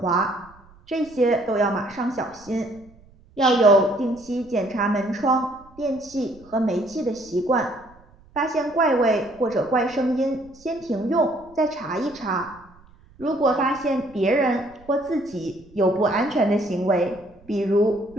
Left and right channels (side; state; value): right; noise; rumble, 26 dB below the sound